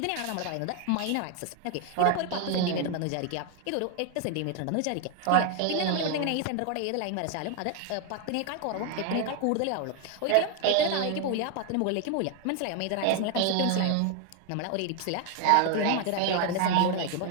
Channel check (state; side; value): different; both; correlation 0.01